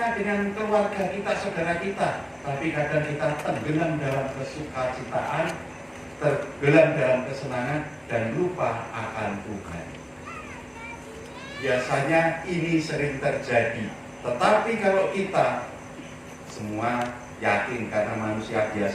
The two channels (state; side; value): identical; both; correlation 1.00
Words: dengan keluarga kita, saudara kita, tapi kadang kita tenggelam dalam kesukacitaan, tenggelam dalam kesenangan dan lupa akan Tuhan. Biasanya ini sering terjadi. Tetapi kalau kita semua yakin karena manusia